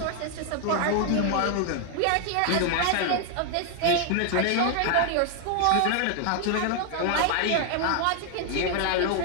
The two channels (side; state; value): both; different; correlation 0.00